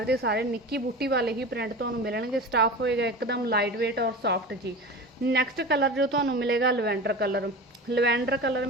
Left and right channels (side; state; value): both; normal; correlation 0.31